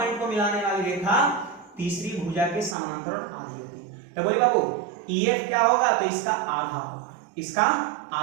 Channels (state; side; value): drops out; left; at 2.8 s